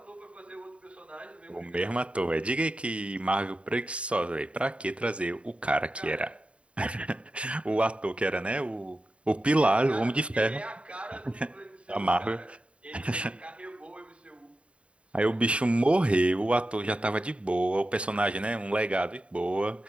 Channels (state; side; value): late; left; 0.061 ms